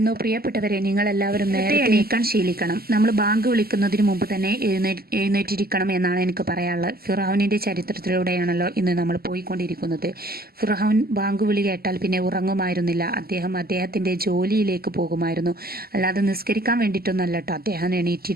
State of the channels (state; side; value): late; left; 0.45 ms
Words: പ്രിയപ്പെട്ടവരെ, നിങ്ങളെല്ലാവരും നേരത്തെ എണീക്കാൻ ശീലിക്കണം. നമ്മൾ ബാങ്ക് വിളിക്കുന്നതിന് മുമ്പ് തന്നെ എഴുന്നേറ്റിരിക്കണം എന്നാണ് എനിക്ക് പറയാനുള്ളത്. ഫിർഔനിൻ്റെ ചരിത്രത്തിലൂടെയാണല്ലോ ഇന്ന് നമ്മൾ പോയിക്കൊണ്ടിരിക്കുന്നത്. ഫിർഔൻ ബാങ്ക് വിളി കേട്ടാൽ പിന്നെ ഉറങ്ങുമായിരുന്നില്ല. അദ്ദേഹത്തിൻ്റെ ജോലിയിലേക്ക് പോകുമായിരുന്നു. അല്ലാതെ നിസ്കരിക്കാൻ വേണ്ടിയിട്ടൊന്നല്ല കേട്ടോ അദ്ദേഹം